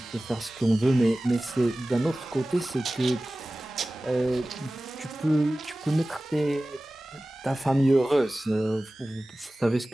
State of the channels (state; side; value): normal; both; correlation 0.97